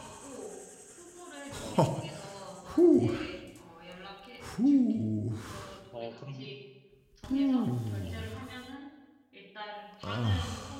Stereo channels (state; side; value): identical; both; correlation 1.00